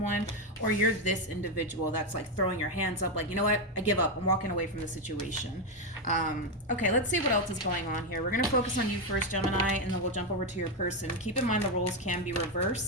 or you're this individual that's like throwing your hands up like, you know what, I give up, I'm walking away from the situation. Okay, let's see what else is going on here. We're going to focus on you first, Gemini, and then we'll jump over to your person. Keep in mind the roles can be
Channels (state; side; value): normal; both; correlation 0.07